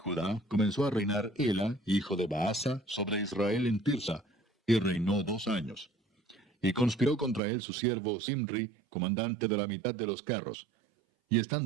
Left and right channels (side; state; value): left; drops out; at 7.4 s